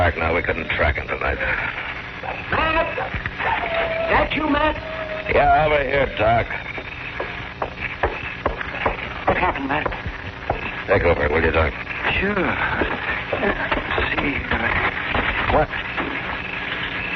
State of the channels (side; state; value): both; identical; correlation 1.00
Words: now. We couldn't track him tonight. Matt! That you, Matt? Yeah, over here, Doc. What happened, Matt? Take over, will you, Doc? Sure. Let's see. What?